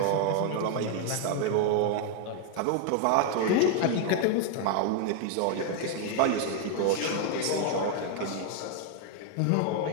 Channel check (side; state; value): both; different; correlation 0.00